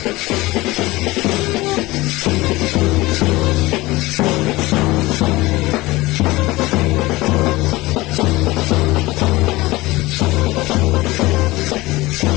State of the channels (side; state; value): right; quieter; 20.3 dB